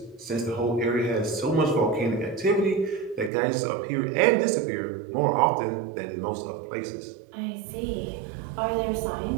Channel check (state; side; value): drops out; left; at 3.3 s